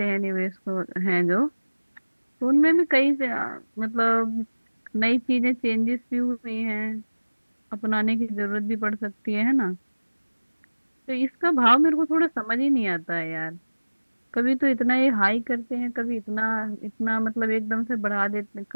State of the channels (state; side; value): inverted; both; correlation -1.00